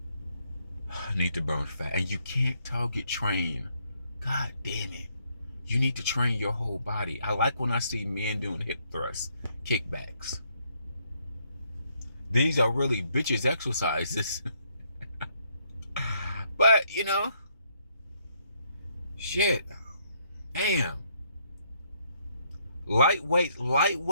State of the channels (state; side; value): inverted; both; correlation -0.72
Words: need to burn fat. And you can't target train. God damn it. You need to train your whole body. I like when I see men doing hip thrusts, kickbacks. These are really bitches exercises. But, shit. Damn. Light